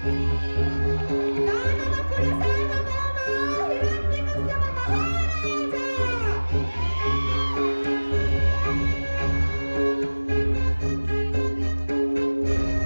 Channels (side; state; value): both; inverted; correlation -1.00